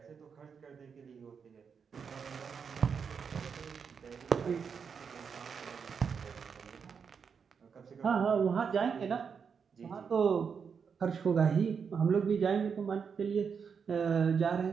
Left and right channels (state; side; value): quieter; left; 6.3 dB